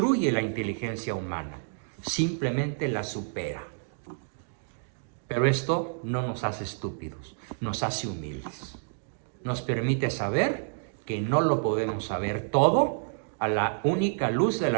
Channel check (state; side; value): silent; left; digital silence